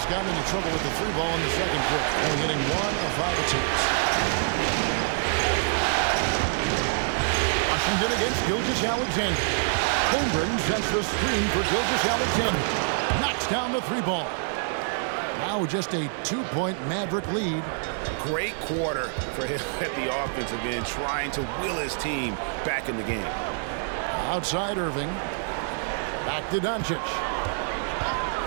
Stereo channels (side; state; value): left; silent; 56 dB below the other